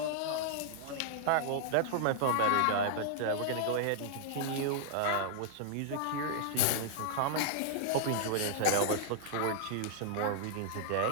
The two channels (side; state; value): both; different; correlation -0.01